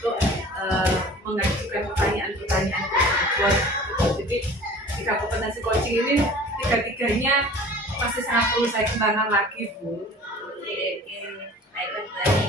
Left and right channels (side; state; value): both; normal; correlation 0.44